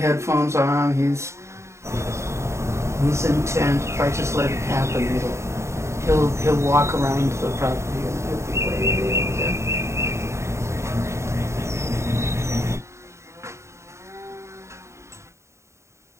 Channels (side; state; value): left; late; 0.14 ms